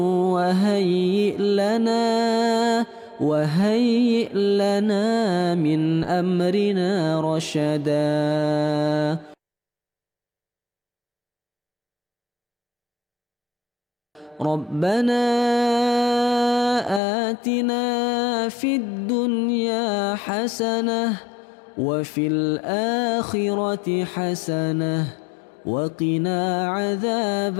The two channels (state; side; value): drops out; right; at 17.0 s